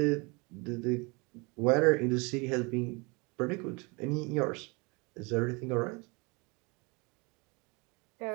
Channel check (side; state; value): left; quieter; 28.8 dB